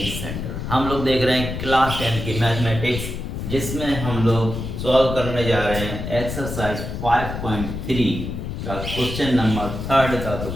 centre. हम लोग देख रहे हैं क्लास 10 की मैथमेटिक्स, जिसमें हम लोग सॉल्व करने जा रहे हैं एक्सरसाइज 5.3 का क्वेश्चन नंबर 3 का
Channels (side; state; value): left; noise; rumble, 6 dB below the sound